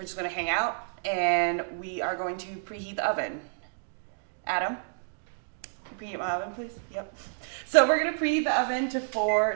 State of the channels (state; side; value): silent; left; digital silence